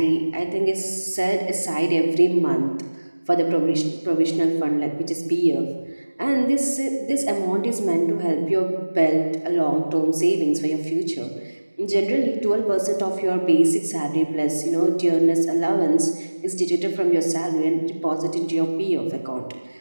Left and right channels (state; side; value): inverted; both; correlation -1.00